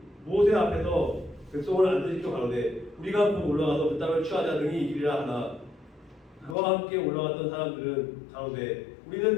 모세 앞에서 백성을 안전시켜 가로되 우리가 곧 올라가서 그 땅을 취하자 등이 이기리라 하나 그와 함께 올라갔던 사람들은 가로되 우리는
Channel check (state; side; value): drops out; right; at 6.6 s